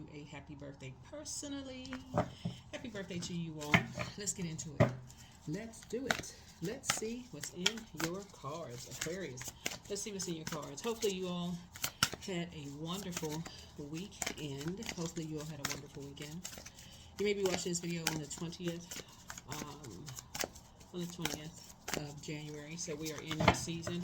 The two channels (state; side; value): identical; both; correlation 1.00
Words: a happy birthday personally. Happy birthday to you all. Let's get into it. Let's do it. Let's see what's in your cards, Aquarius. Let's see what's in your cards. Hopefully you all had a wonderful weekend. Hopefully you all had a wonderful weekend. You may be watching this video on the 20th, of January. So we are in your